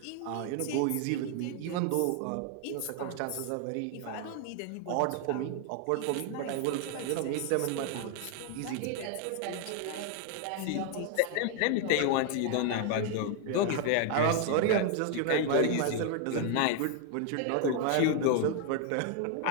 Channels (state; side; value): different; both; correlation 0.00